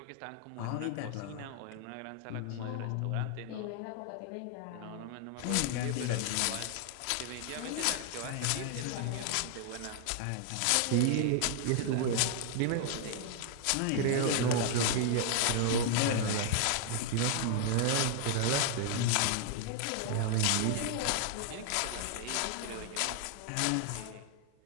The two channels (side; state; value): both; different; correlation 0.00